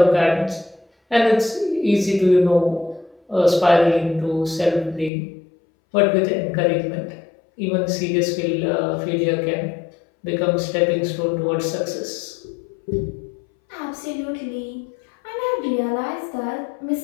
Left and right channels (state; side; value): drops out; right; at 5.1 s